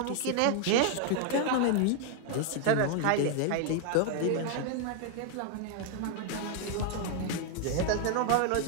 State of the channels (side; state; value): both; different; correlation 0.00